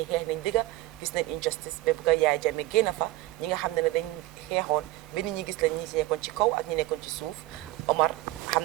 xeex nañ digga gis nañ injustice ba bëgg a Yaaya Jammeh génn fa ñi nga xam ne dañ xeexoon ba nit ñi gis lañ ñi nekkoon ci kaw ak ñi nekkoon ci suuf Omar xam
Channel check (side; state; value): left; quieter; 17.1 dB